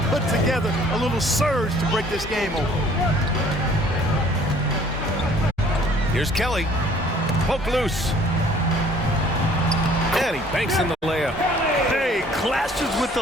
put together a little surge to break this game open. Here's Kelly. Poke loose. And he banks in the layup. Hey, clashes with the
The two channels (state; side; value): normal; both; correlation 0.56